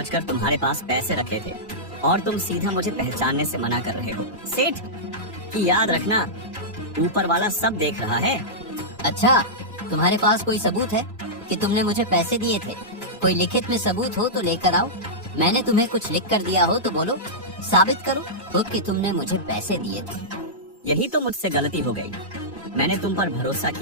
तुम्हारे पास पैसे रखे थे और तुम सीधा मुझे पहचानने से मना कर रहे हो। सेठ की याद रखना, ऊपर वाला सब देख रहा है। अच्छा, तुम्हारे पास कोई सबूत है कि तुमने मुझे पैसे दिए थे? कोई लिखित में सबूत हो तो लेकर आओ। मैंने तुम्हें कुछ लिख कर दिया हो तो बोलो, साबित करो खुद कि तुमने मुझे पैसे दिए थे। यही तो मुझसे गलती हो गई, मैंने तुम पर भरोसा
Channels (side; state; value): both; normal; correlation -0.12